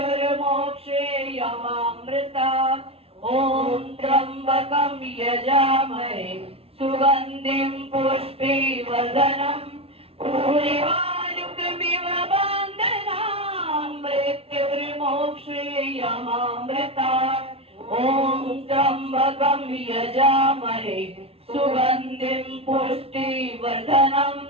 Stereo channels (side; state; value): left; late; 0.28 ms